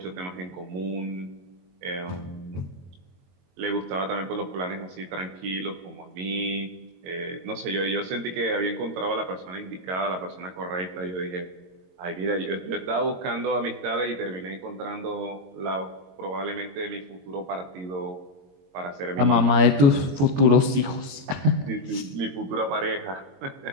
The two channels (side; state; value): left; late; 22 ms